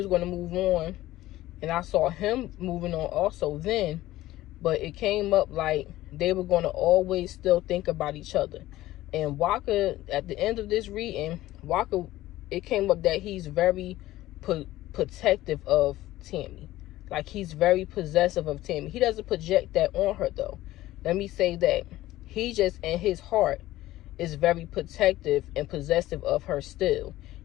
going to move on, and I saw him moving on also then, but it came up like they were going to always still think about each other. And Walker, at the end of this reading, Walker, it came up that he's very protective of Tammy. Like, he's very possessive of Tammy. He doesn't project that on her, though. Let me say that. He just, in his heart, is very protective and possessive of her still.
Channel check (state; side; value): quieter; right; 15.9 dB